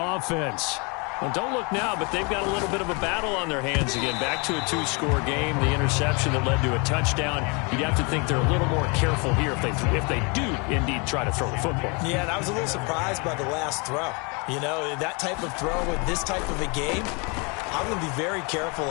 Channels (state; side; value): quieter; right; 31.3 dB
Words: Well, don't look now, but they've got a little bit of a battle on their hands again. Back to a 2-score game, the interception that led to a touchdown. You'd have to think they're a little more careful here if they do indeed try to throw the football. Yeah, and I was a little surprised by the last throw. You know, that type of throw with this type of a game, I'm going to be very careful